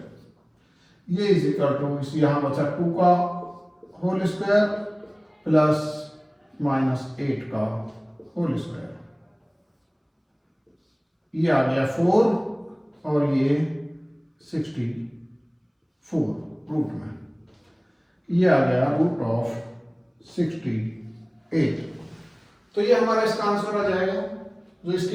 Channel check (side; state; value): both; identical; correlation 1.00